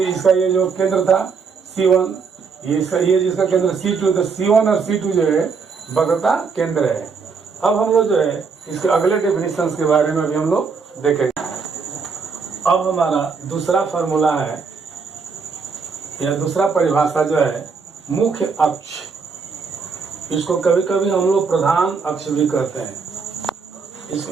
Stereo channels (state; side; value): quieter; left; 5.2 dB